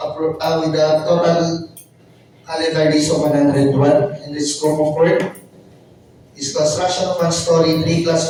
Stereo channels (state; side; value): identical; both; correlation 1.00